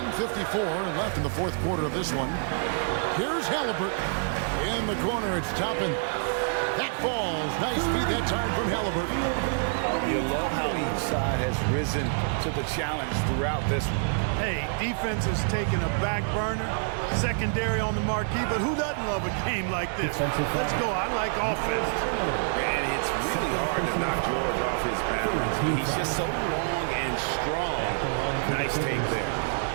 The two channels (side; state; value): left; silent; 60 dB below the other